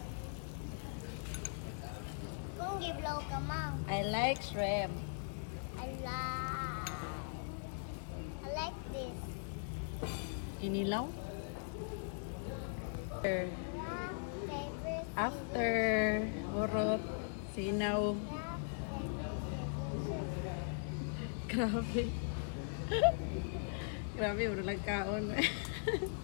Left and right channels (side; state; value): right; silent; digital silence